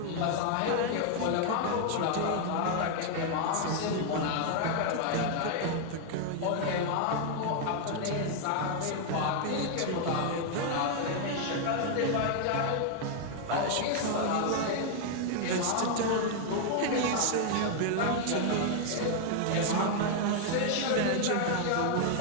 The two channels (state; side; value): different; both; correlation 0.00